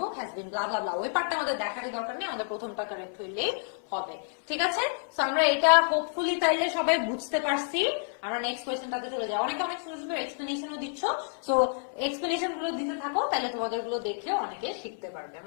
has been blah blah blah. ওই পার্টটা আমাদের দেখারই দরকার নেই, আমাদের প্রথমটা কারেক্ট হইলেই হবে। ঠিক আছে, সো আমরা এটা হোপফুলি তাইলে সবাই বুঝতে পারছি। আমরা নেক্সট কোয়েশ্চেনটাতে চলে যাই। অনেকে অনেক সুন্দর সুন্দর এক্সপ্লেনেশনও দিচ্ছ, সো এক্সপ্লেনেশন গুলো দিতে থাকো, তাহলে তোমাদের গুলো দেখলেও অনেকে শিখতে পারবে।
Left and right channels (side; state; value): right; silent; 58 dB below the other